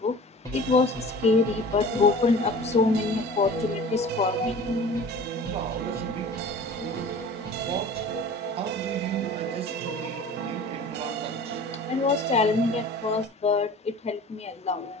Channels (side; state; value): both; normal; correlation 0.42